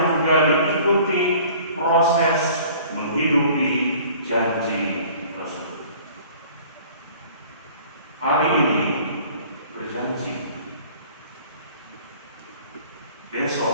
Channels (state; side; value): inverted; both; correlation -0.50